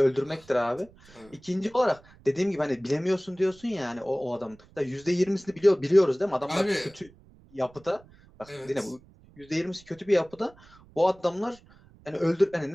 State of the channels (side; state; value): right; noise; rumble, 26 dB below the sound